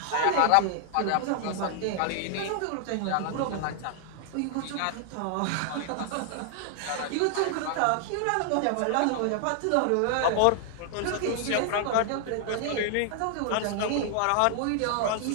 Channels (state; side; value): different; both; correlation 0.00